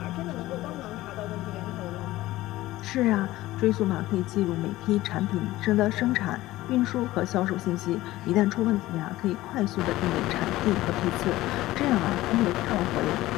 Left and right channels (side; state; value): right; quieter; 16.9 dB